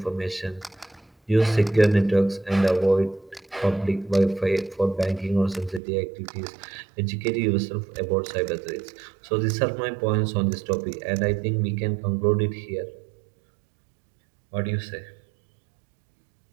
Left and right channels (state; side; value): drops out; left; at 5.8 s